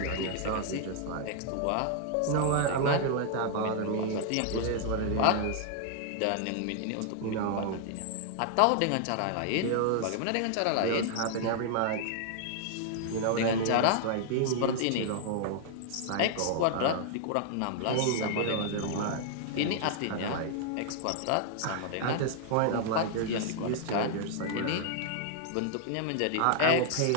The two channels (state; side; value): different; both; correlation -0.01